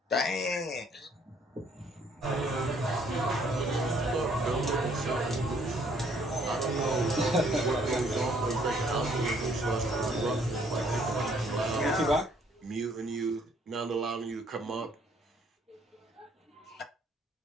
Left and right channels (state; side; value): normal; both; correlation 0.64